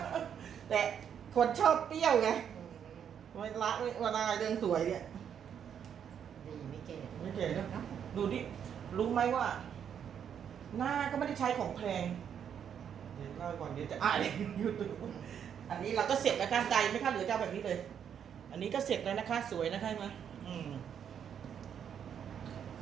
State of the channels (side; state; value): left; quieter; 8.4 dB